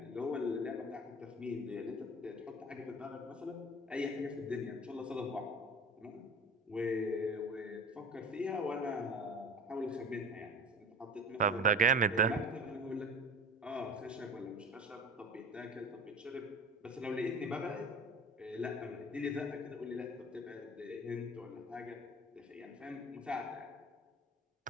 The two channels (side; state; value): both; normal; correlation 0.36